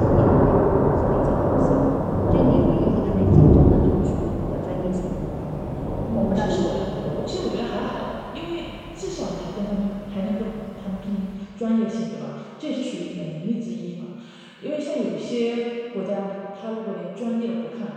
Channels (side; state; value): both; identical; correlation 1.00